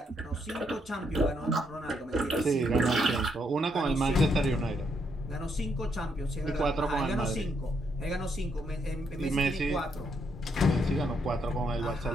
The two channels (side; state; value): both; normal; correlation 0.76